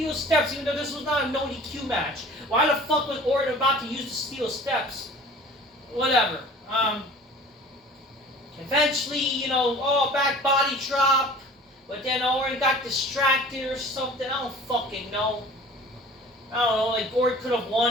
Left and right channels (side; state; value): both; normal; correlation 0.45